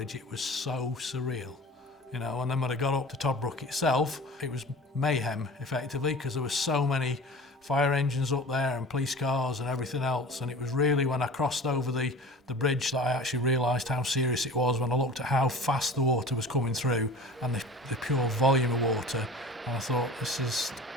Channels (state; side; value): normal; both; correlation 0.39